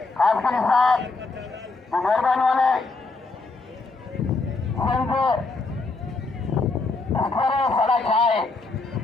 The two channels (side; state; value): right; quieter; 3.7 dB